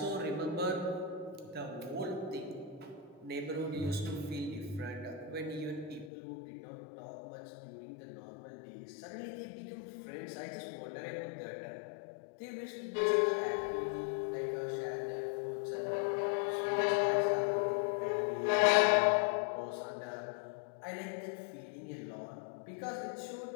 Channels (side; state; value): right; drops out; at 6.1 s